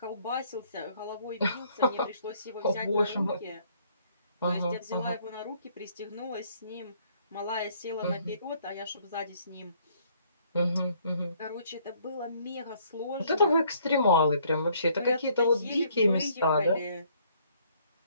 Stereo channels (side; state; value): both; inverted; correlation -0.64